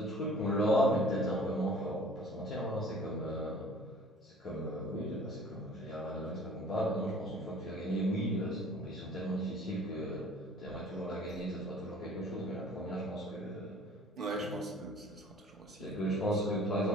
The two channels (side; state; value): both; normal; correlation 0.49